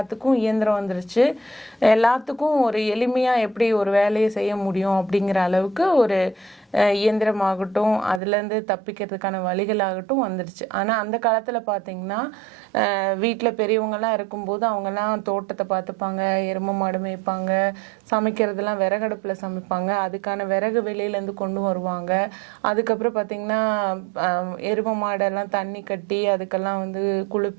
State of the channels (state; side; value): drops out; left; at 8.2 s